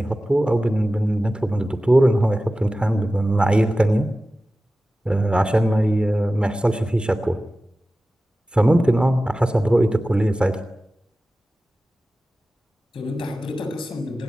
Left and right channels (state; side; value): normal; both; correlation 0.96